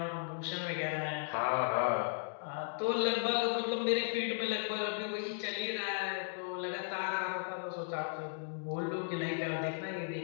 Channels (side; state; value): right; silent; digital silence